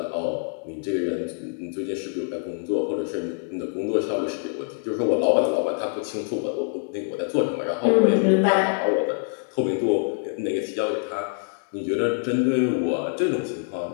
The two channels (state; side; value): silent; right; digital silence